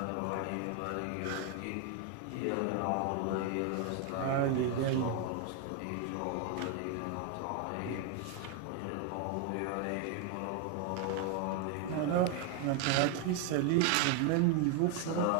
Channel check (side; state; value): both; different; correlation 0.01